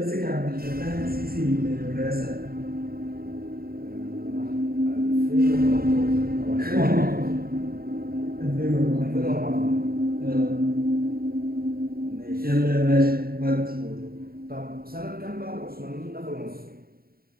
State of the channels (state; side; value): late; left; 0.43 ms